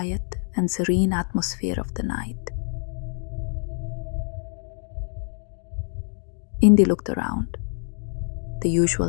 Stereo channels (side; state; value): right; silent; 61 dB below the other